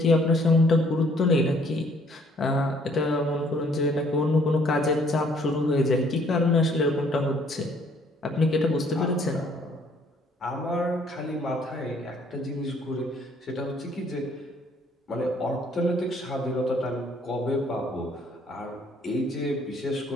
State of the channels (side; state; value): both; normal; correlation 0.62